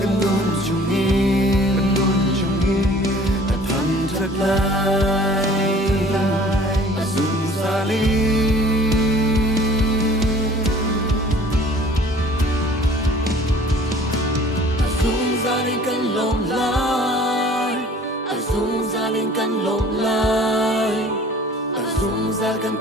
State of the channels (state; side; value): normal; both; correlation 0.50